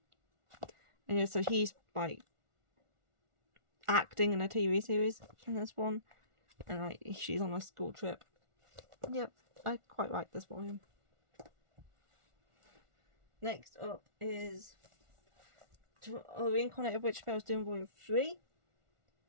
And yeah, so he's like acting in a TV series in this one. And like she's on a school trip. Yep, I quite like this volume. Next up is a Reincarnated Witch Spells doing volume 3,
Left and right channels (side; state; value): left; late; 1.4 ms